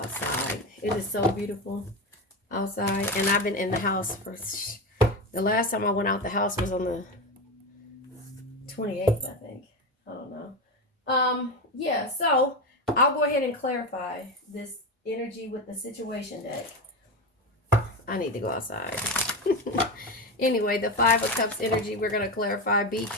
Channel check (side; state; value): both; normal; correlation 0.18